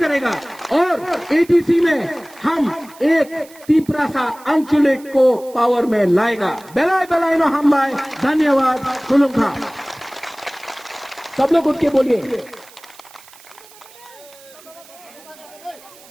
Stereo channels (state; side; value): noise; right; hiss, 23 dB below the sound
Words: करेगा। और एटीसी में हम एक तिपरासा आंचलिक को पावर में लाएगा। बेलाय बेलाय नो हम लाए। धन्यवाद। खुलुमखा। सब लोग उठ के बोलिए।